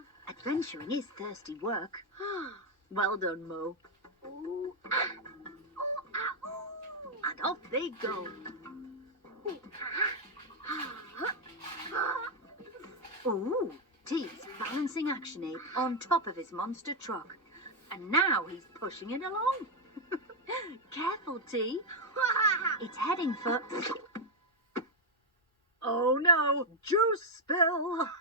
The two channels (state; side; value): normal; both; correlation 0.00